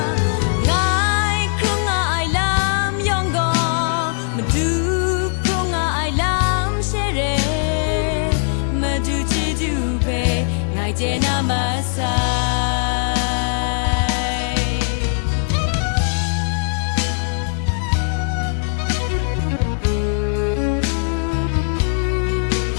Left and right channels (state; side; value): silent; right; digital silence